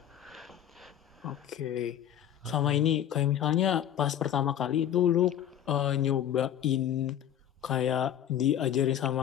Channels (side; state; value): right; quieter; 10.5 dB